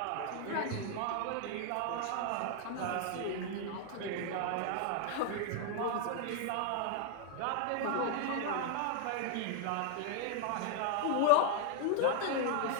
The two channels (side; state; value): both; different; correlation 0.00